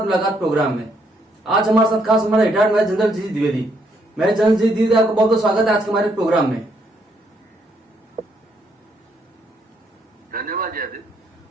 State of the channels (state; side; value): normal; both; correlation 0.73